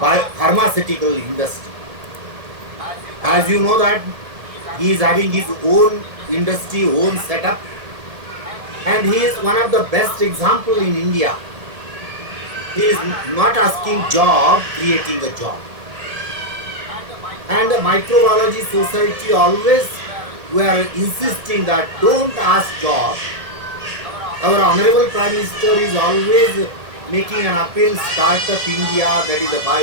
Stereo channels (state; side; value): late; left; 1.7 ms